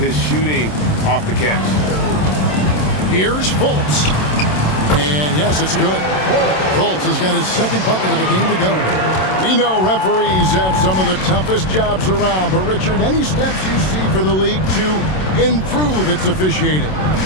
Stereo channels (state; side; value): late; right; 27 ms